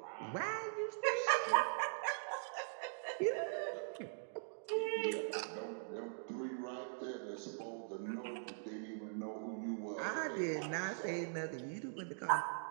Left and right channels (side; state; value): left; silent; digital silence